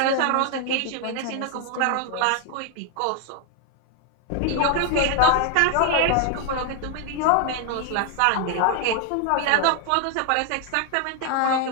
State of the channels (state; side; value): different; both; correlation 0.00